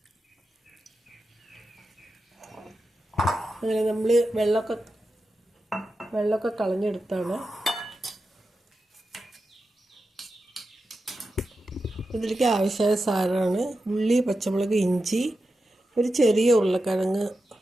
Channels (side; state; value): both; normal; correlation 0.91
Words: അങ്ങനെ നമ്മൾ വെള്ളമൊക്കെ കളഞ്ഞെടുത്താണ്. ഇതിലേക്ക് ആവശ്യമായ സാധനമാണ് ഉള്ളി, പച്ചമുളക്, ഇഞ്ചി, ഒരു ചെറിയ ഉരുളക്കിഴങ്ങ്